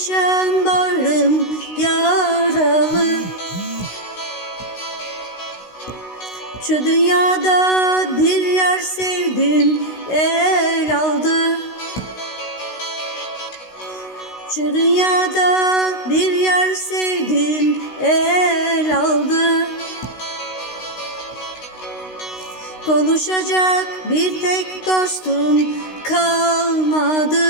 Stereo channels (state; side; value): late; right; 16 ms